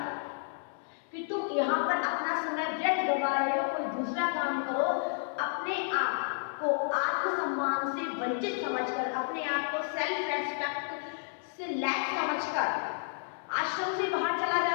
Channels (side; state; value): right; silent; digital silence